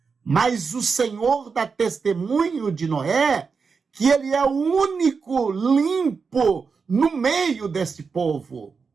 Mas o Senhor dá testemunho de Noé que ele é o único limpo no meio desse povo.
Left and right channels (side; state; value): left; quieter; 5.2 dB